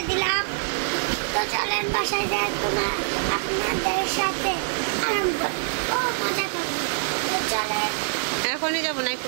দিলাম। তো চলেন বাসায় যাই, তোমার আপনাদের সাথে আরম্ভ মজা করবো। তো চলে এখনই যাবো না, একটু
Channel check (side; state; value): left; silent; digital silence